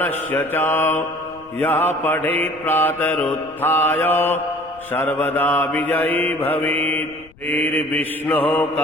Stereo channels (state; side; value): noise; left; rumble, 26 dB below the sound